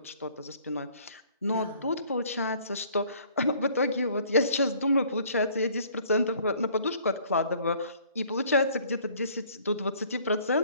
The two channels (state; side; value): inverted; both; correlation -0.58